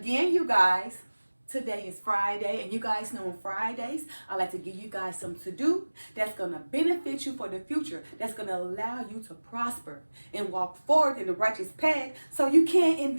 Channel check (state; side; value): inverted; both; correlation -1.00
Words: you guys, today is Friday, and you guys know on Fridays, I like to give you guys something to do that's going to benefit you for the future, that's going to allow you to prosper and walk forward in the righteous path so you can